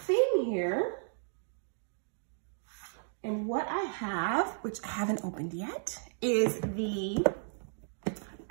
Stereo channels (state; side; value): silent; left; digital silence